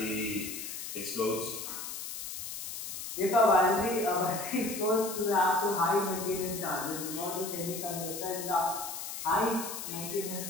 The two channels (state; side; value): noise; left; hiss, 7 dB below the sound